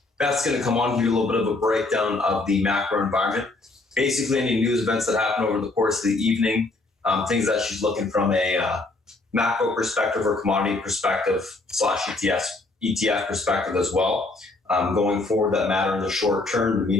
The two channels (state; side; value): quieter; right; 3.2 dB